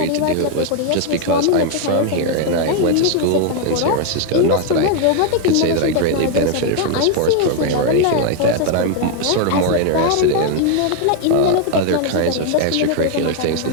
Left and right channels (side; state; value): both; different; correlation 0.00